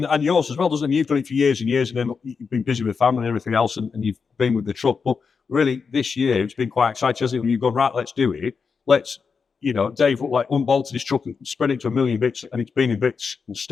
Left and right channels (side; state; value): right; quieter; 5.4 dB